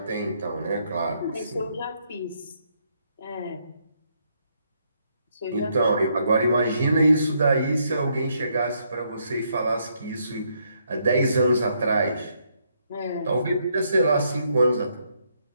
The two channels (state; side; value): inverted; both; correlation -0.74